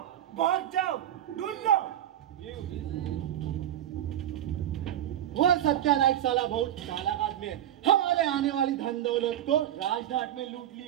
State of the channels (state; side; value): quieter; left; 11.5 dB